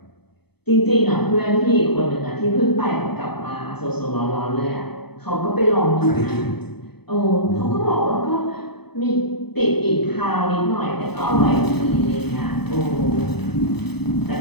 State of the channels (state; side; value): late; right; 0.97 ms